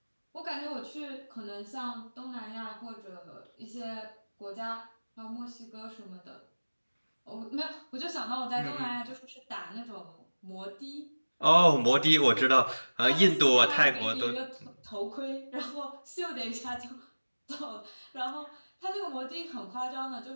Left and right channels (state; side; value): inverted; both; correlation -1.00